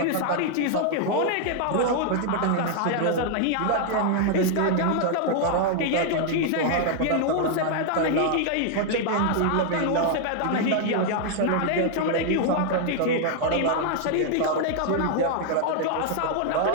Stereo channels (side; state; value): both; different; correlation 0.00